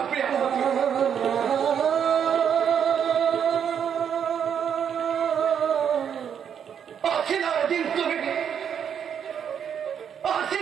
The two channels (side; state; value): left; quieter; 8.1 dB